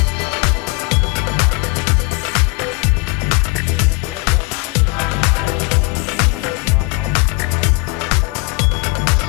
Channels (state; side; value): quieter; right; 26.7 dB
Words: 那个俱乐部像酒吧一样的，其实这个也是蛮好玩的，也是国内比较少吧，就是其实平时打篮球啊、打网球啊、打羽毛球都很多，那么